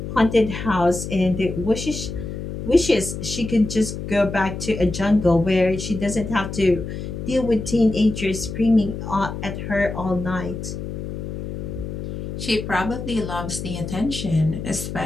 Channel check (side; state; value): left; noise; hum, 7 dB below the sound